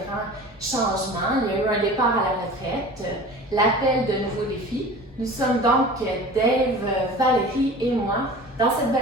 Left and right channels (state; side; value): normal; both; correlation 0.39